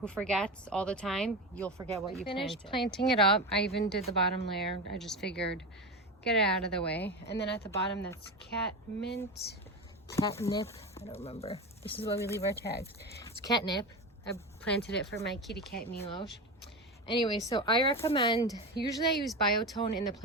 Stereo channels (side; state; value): both; normal; correlation 0.22